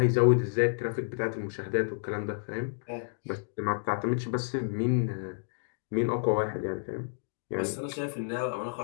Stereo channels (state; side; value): silent; right; digital silence